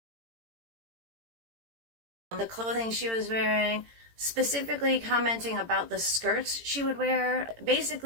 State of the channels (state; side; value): late; left; 18 ms